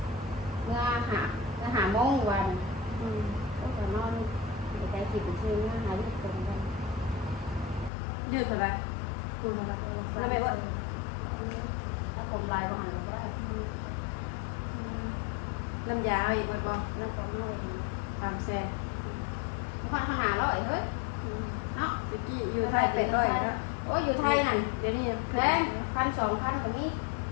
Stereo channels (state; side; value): drops out; right; at 7.9 s